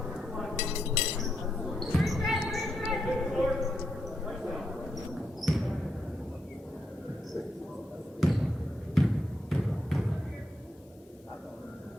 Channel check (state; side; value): normal; both; correlation 0.82